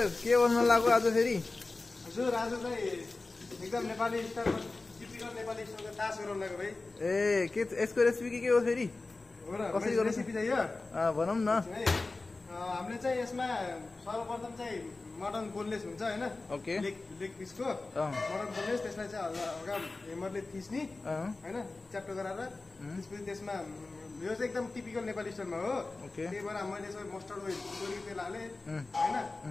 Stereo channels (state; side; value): quieter; right; 3.4 dB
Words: के बोल्न लाग्यो आज फेरि? हजुर आज चाहिँ एकदम नेपाली स्टाइलमा टिपिकल नेपाली स्टाइलको तास गराउन लाग्यो भाइ। ए के यसको रेसिपी के हो फेरि? हो र कसरी गर्नु? रेसिपी चाहिँ यो भनौँ न। है हामीले चाहिँ यसमा सर्वप्रथम चाहिँ मटन बोनलेस हुन्छ हैन, ओके। लेग पिसको मटन बोनलेस, त्यसलाई चाहिँ हल्का हेमरले थिच्ने हैन, च्याप्टो गराएर त्यसपछि त्यसमा यो चाहिँ एकदम टिपिकल नेपाली स्टाइलमा हो। ओके। त्यही भएर मैले चाहिँ मस्टर्ड ओइल तोरीको तेल हालेँ हैन,